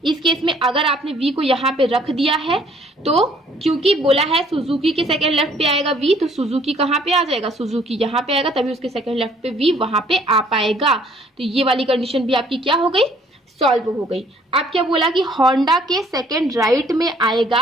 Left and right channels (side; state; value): both; normal; correlation 0.61